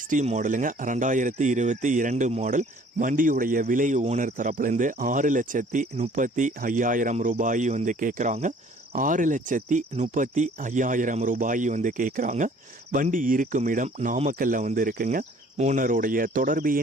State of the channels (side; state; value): both; normal; correlation 0.55